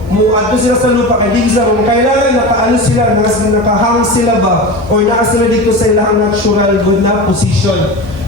ato sila sa lupa kay Digsa kung kailangan nakaano sila, nakahang sila ba or naka sila dito sa ilang natural good na position.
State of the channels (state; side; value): normal; both; correlation 0.27